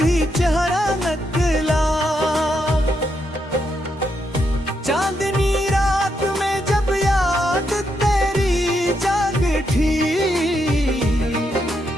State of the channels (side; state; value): both; normal; correlation 0.80